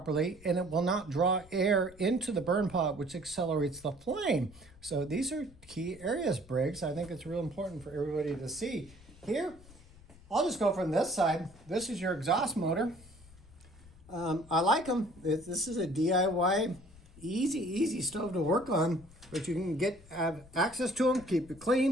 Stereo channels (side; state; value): left; noise; rumble, 22 dB below the sound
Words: and it will not draw air into the burn pot, which accelerates the flame. So these are key areas, Briggs. I think it's real important for everybody to see. Here, I'll just go from this side. This is your exhaust motor. I like them. This is a DIY, easy stove to work on, but you can have access to them, keep it